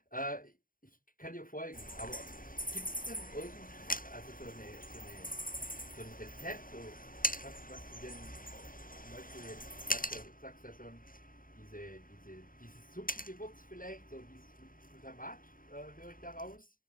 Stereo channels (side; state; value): right; late; 0.40 ms